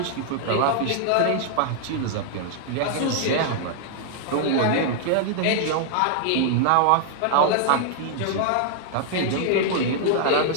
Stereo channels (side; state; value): both; different; correlation -0.01